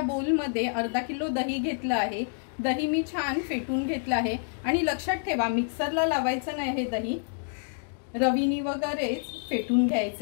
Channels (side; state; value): right; silent; digital silence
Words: बोल मध्ये अर्धा किलो दही घेतलं आहे। दही मी छान फेटून घेतलं आहे आणि लक्षात ठेवा मिक्सरला लावायचं नाही, हे दही रवीनी वगैरेच फेटून